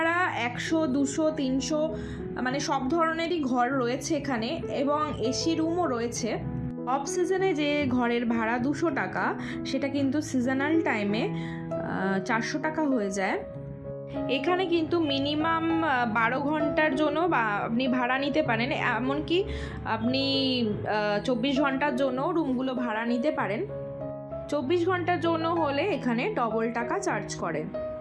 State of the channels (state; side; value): identical; both; correlation 1.00